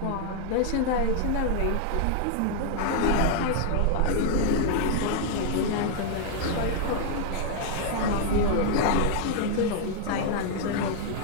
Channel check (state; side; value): different; both; correlation 0.00